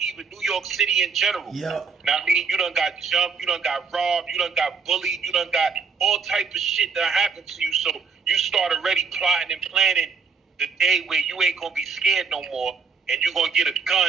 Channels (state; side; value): quieter; left; 5.1 dB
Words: even New York City in general. Yeah. Now, I mean, you done got jumped, you done got robbed, you done got bullied, you done got all type of shit that happened to you. So you start already plotting and planning the day where you ain't gonna be scared no more, and you're gonna get a